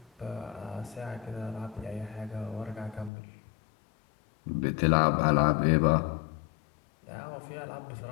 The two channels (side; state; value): right; drops out; at 3.1 s